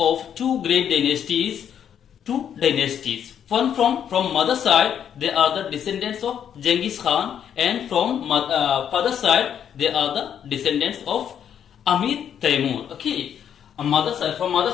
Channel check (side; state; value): right; quieter; 8.9 dB